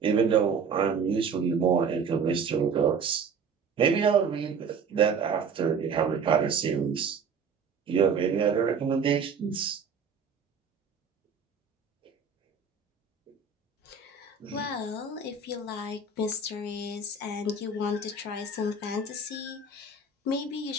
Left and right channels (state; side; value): quieter; left; 5.1 dB